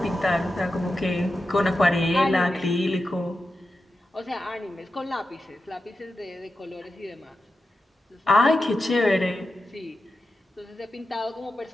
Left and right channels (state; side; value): normal; both; correlation 0.90